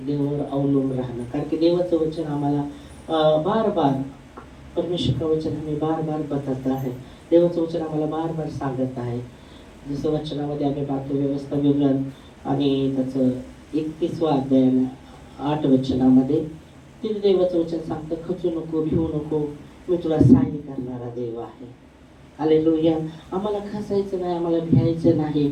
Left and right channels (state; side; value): identical; both; correlation 1.00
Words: देवावर अवलंबून राहणं. कारण की देवाचं वचन आम्हाला बार बार, परमेश्वर वचन आम्ही बार बार बदलत आहे. देवाचं वचन आम्हाला बार बार सांगत आहे. जसं वचनामध्ये आम्ही पाहतो व्यवस्था विवरण आणि त्याचं 31वा अध्याय 8 वचनामध्ये तिथे देवाचं वचन सांगतं, खचू नको, भिवू नको, मी तुला सहाय्य करणारा देव आहे. हालेलुया. आम्हाला खचायचं नाही, आम्हाला भ्यायचं नाही.